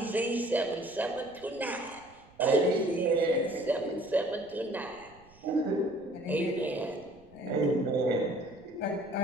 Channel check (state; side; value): noise; right; rumble, 26 dB below the sound